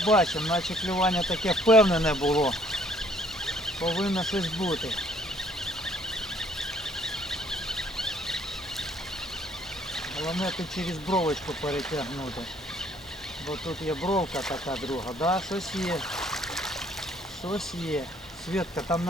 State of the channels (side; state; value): both; normal; correlation 0.62